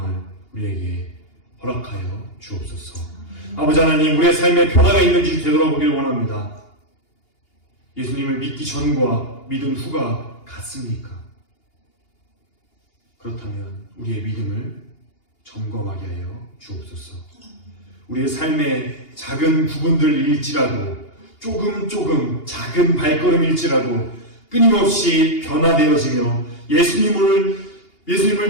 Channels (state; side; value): late; right; 2.8 ms